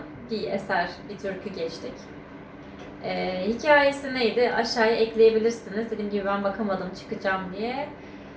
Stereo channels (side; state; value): both; identical; correlation 1.00